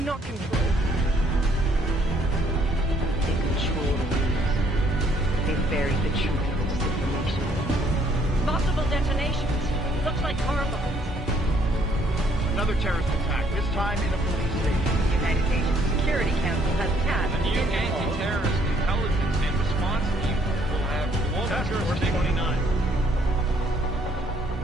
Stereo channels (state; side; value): normal; both; correlation 0.65